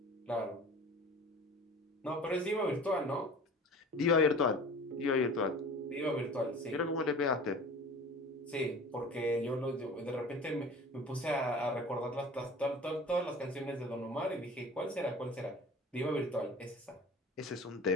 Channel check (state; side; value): normal; both; correlation 0.41